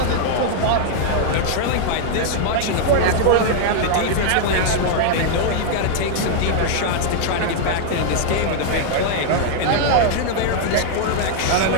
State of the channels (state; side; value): different; both; correlation -0.01